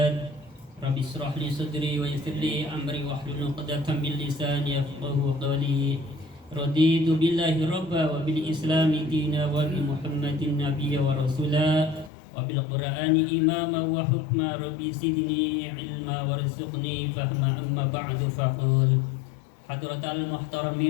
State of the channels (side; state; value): right; drops out; at 12.1 s